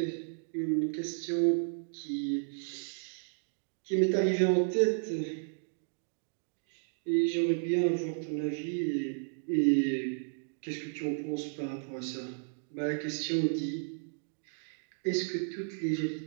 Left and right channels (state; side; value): silent; left; digital silence